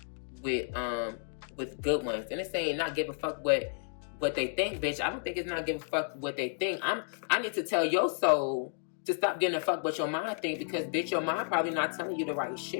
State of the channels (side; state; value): right; silent; digital silence